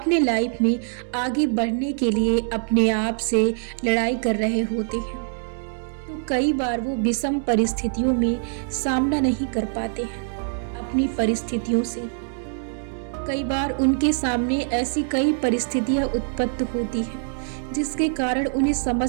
लाइफ में आगे बढ़ने के लिए अपने आप से लड़ाई कर रहे होते हैं, तो कई बार वो विषम परिस्थितियों में सामना नहीं कर पाते हैं अपनी परिस्थितियों से। कई बार उनके सामने ऐसी कई परिस्थितियां उत्पन्न होती हैं जिसके कारण उन्हें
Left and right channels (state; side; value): silent; left; 63 dB below the other